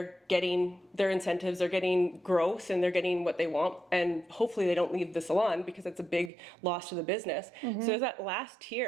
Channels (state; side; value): drops out; left; at 6.3 s